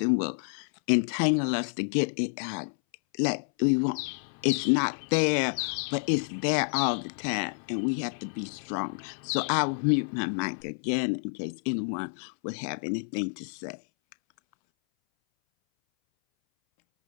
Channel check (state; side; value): silent; right; 59 dB below the other